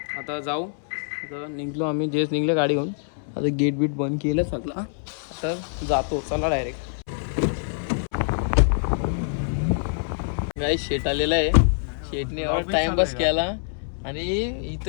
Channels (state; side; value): silent; right; 62 dB below the other